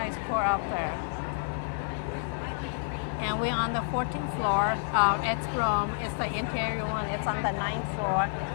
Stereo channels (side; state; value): right; silent; 58 dB below the other